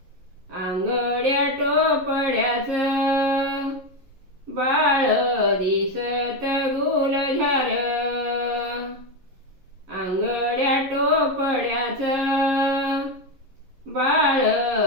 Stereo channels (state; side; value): late; left; 11 ms